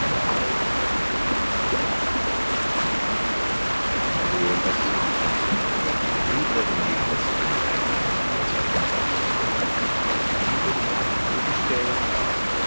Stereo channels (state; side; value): inverted; both; correlation -1.00